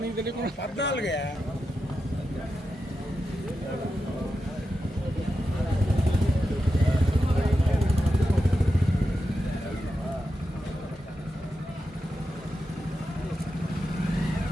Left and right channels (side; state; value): both; normal; correlation 0.89